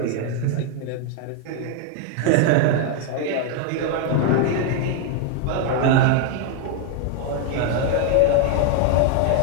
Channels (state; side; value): different; both; correlation 0.01